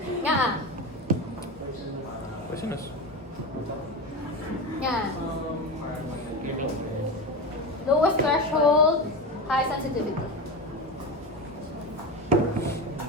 Nga Poisonous. Yan. Lowest threshold, high sensitivity.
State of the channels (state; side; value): normal; both; correlation 0.22